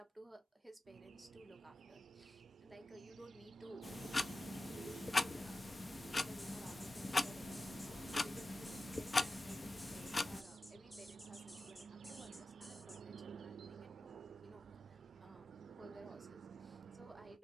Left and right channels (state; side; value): normal; both; correlation 0.95